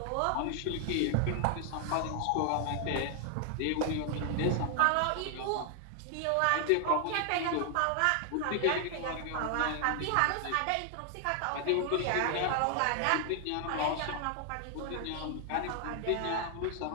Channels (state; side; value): different; both; correlation 0.00